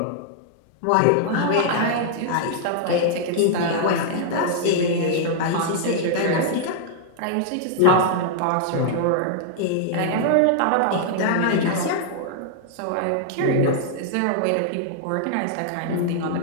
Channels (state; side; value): different; both; correlation -0.01